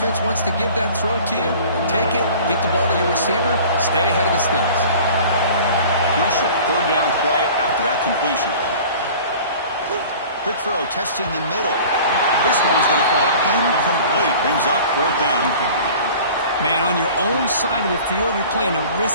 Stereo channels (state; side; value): inverted; both; correlation -0.44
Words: wants to give that throw to you. Take it, get the ball to your receiver, stay ahead of the sticks. Crucial 3rd down play after that completion. Quick throw, testing the middle. This one's going to fall incomplete. Brings up 4th down. Man, on your own side of the field, you're playing a